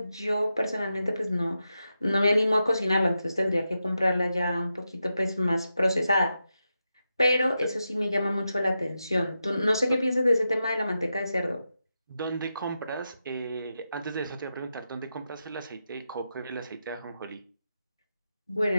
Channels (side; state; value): both; inverted; correlation -0.88